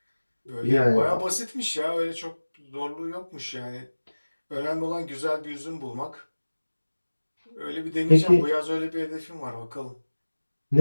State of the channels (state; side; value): inverted; both; correlation -1.00